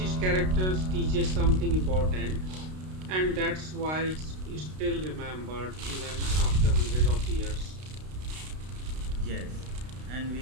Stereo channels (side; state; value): left; late; 32 ms